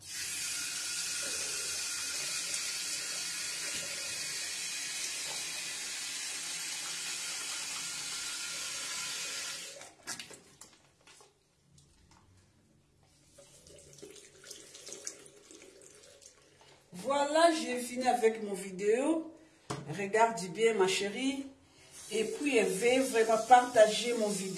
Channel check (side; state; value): both; identical; correlation 1.00